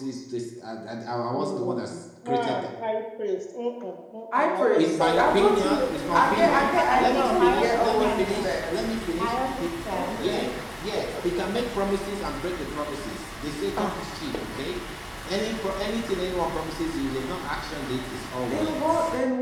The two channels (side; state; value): both; identical; correlation 1.00